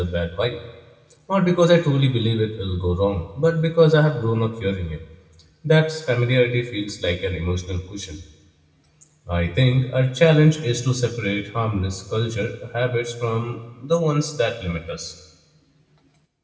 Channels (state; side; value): identical; both; correlation 1.00